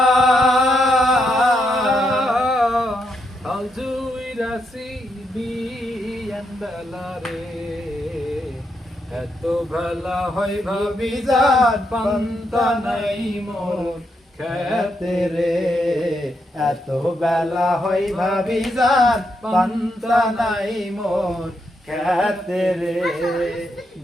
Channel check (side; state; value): both; normal; correlation 0.80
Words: এত বেলা হয় ভাবি যার পান্তা নাই মোর খেতে রে, এত বেলা হয় ভাবি যার পান্তা নাই মোর খেতে রে।